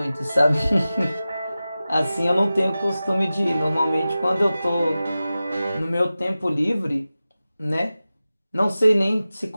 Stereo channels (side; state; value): both; inverted; correlation -0.95